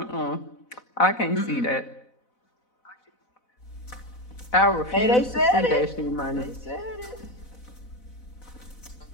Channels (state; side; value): late; right; 4.0 ms